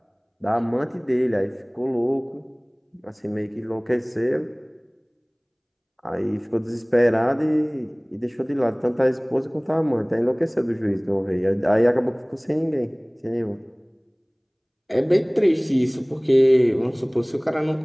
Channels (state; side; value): identical; both; correlation 1.00